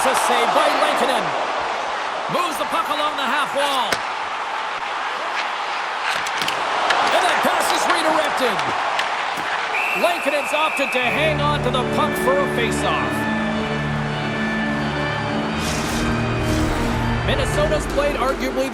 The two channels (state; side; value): identical; both; correlation 1.00